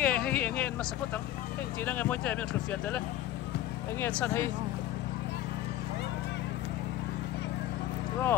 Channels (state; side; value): quieter; right; 13.4 dB